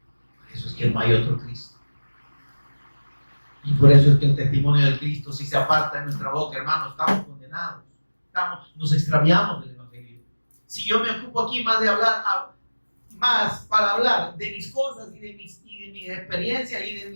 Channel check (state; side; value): inverted; both; correlation -1.00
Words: Por eso es que no hay otro Cristo. Y por eso es que el testimonio del Cristo, si se aparta de nuestra boca, hermanos, estamos condenados. Nos extraviamos del Evangelio. Si yo me ocupo aquí más para hablar de mis cosas y de mis experiencias y de